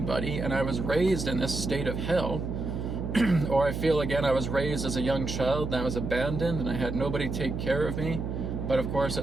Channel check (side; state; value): right; noise; hum, 4 dB below the sound